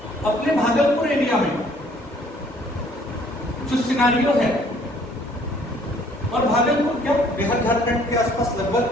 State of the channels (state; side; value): normal; both; correlation 0.60